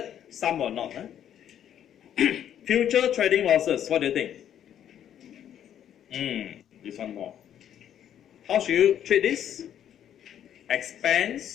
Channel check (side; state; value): right; quieter; 10.1 dB